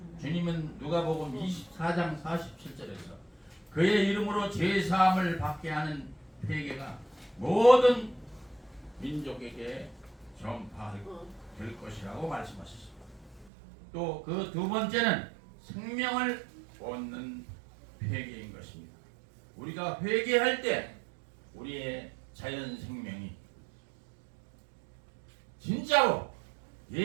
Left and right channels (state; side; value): drops out; left; at 13.5 s